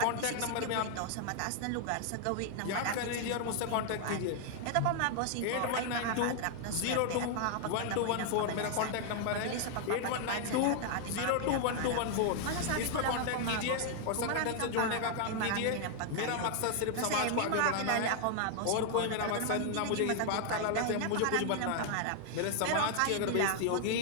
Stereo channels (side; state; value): both; different; correlation 0.00